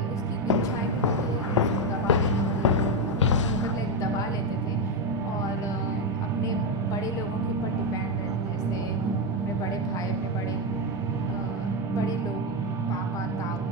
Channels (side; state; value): both; normal; correlation 0.07